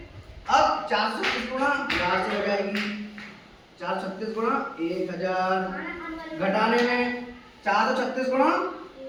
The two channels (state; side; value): identical; both; correlation 1.00